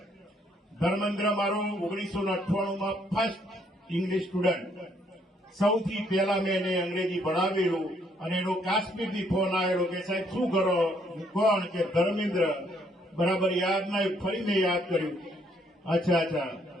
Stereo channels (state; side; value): normal; both; correlation 0.69